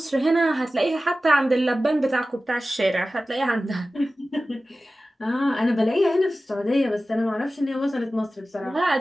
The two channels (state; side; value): normal; both; correlation 0.95